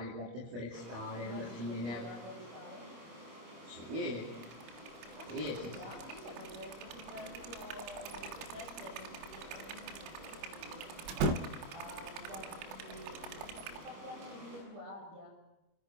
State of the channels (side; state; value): left; late; 26 ms